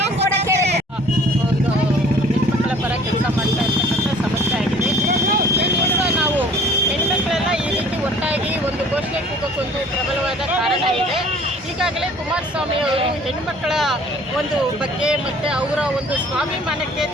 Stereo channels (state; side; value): normal; both; correlation 0.52